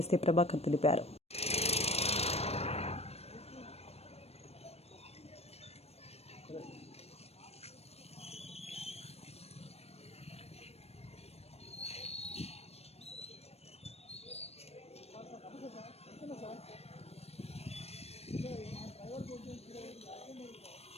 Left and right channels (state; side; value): late; right; 0.30 ms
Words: ఎస్సీ ప్రభాకర్ తెలిపారు.